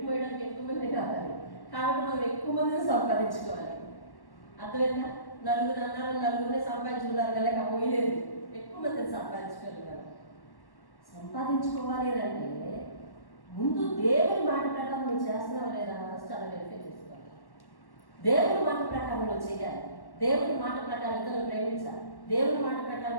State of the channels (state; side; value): late; right; 1.1 ms